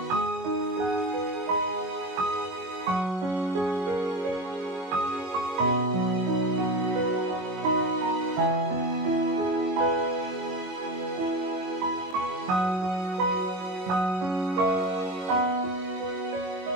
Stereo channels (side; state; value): left; late; 22 ms